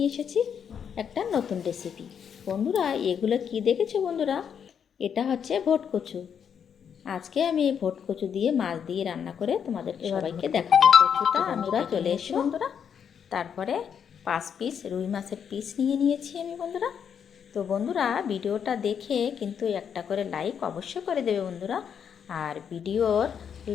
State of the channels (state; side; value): quieter; right; 7.7 dB